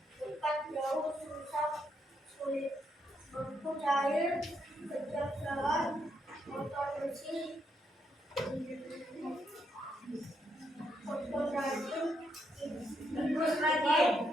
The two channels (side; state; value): both; normal; correlation 0.77